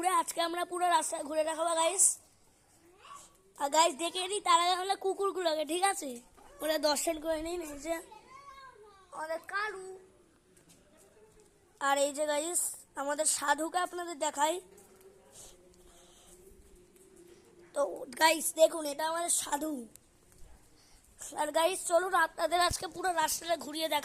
আজকে আমরা পুরো রাস্তা ঘুরে দেখাবো গাইস। আর গাইস দেখে নিই তার আগে আমরা কুকুরগুলোকে, ঠিক আছে? ওরা দর্শন করে নিন। এই যে আমাদের কালু, আর এই যে গাইস আমাদের সাধুকে আপনাদের দেখাই। তো গাইস দেখুন, এটা আমাদের সাধু। আর গাইস চলুন আপনাদের আজকে পুরো রাস্তাটা ঘুরিয়ে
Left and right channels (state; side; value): identical; both; correlation 1.00